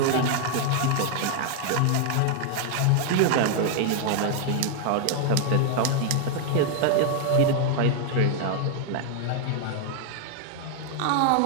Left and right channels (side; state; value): both; different; correlation 0.00